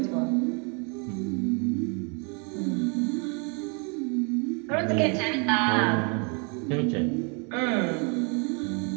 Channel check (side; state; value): left; quieter; 35.5 dB